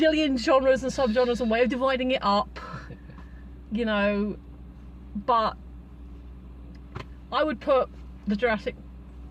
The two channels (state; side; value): identical; both; correlation 1.00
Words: genres and subgenres and way of dividing it up, you know, but I would put the Jurassic